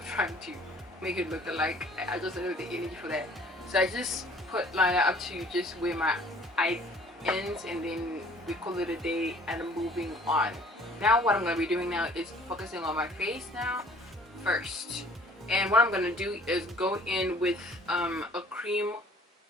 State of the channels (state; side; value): normal; both; correlation 0.54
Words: trying to make it look alike. I just don't have the energy for that. So I just put liner up to just where my eye ends, and then we call it a day and I'm moving on. Now what I'm going to be doing now is focusing on my face now first. And what I'm going to do is go in with a cream